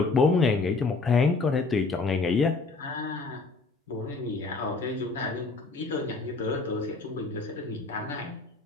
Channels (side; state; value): right; quieter; 3.8 dB